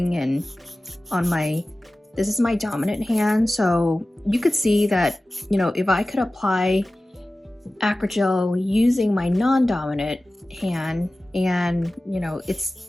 and on my, this is my dominant hand. So you could see that, you know, if I could apply Acrygel using my non-dominant hand and, you know, if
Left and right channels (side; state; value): both; normal; correlation 0.96